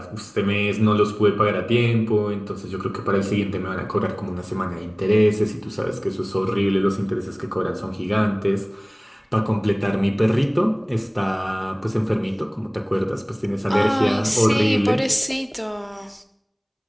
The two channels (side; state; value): both; identical; correlation 1.00